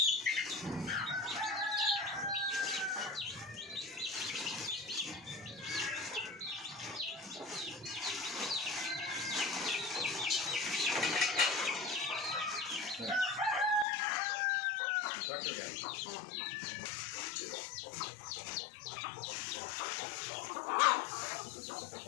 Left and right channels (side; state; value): right; drops out; at 13.9 s